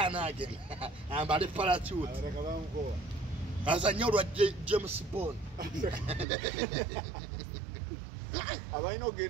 agenda ambale parachute azanye olwa James Bond abaina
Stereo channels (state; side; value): drops out; left; at 6.2 s